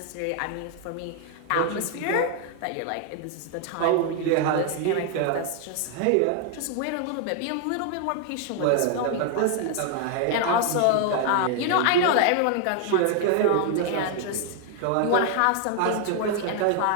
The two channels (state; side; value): different; both; correlation 0.00